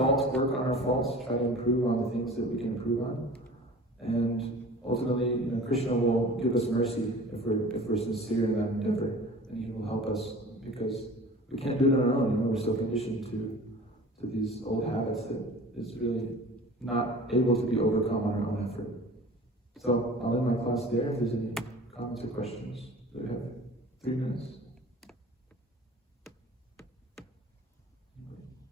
work on our faults, try to improve on the things that we can improve on. And ultimately, you know, Krishna will give us mercy if we're sincere in that endeavor, and he will help us, because we can't do it on our own. You know, we're so conditioned to these old habits that it's really not able to be overcome on our own effort. So I'll end my class there. If there's any comments or questions, we have 3 minutes.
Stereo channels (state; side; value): normal; both; correlation 0.42